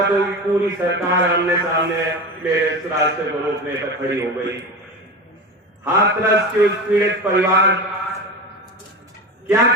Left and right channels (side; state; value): both; normal; correlation 0.26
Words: तो पूरी सरकार आमने सामने मेरे इस रास्ते को रोकने पर खड़ी हो गई। हाथरस के उस पीड़ित परिवार, क्या